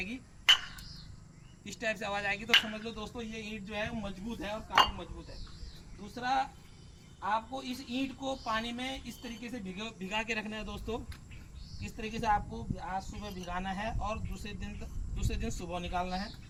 इस टाइप से आवाज़ आएगी तो समझ लो दोस्तों ये ईंट जो है वो मजबूत है और काफ़ी मजबूत है। दूसरा, आपको इस ईंट को पानी में इस तरीके से भिगा के रखना है दोस्तों। इस तरीके से आपको आज सुबह भिगाना है और दूसरे दिन सुबह निकालना है।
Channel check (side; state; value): both; identical; correlation 1.00